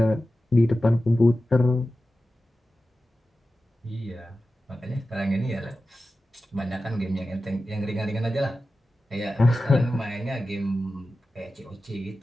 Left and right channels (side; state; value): both; normal; correlation 0.94